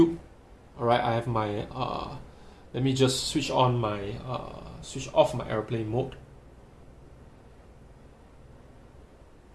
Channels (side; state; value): both; identical; correlation 1.00